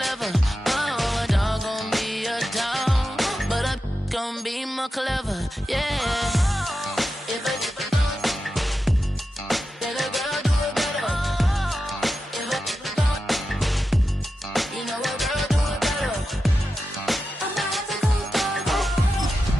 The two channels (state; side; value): normal; both; correlation 0.91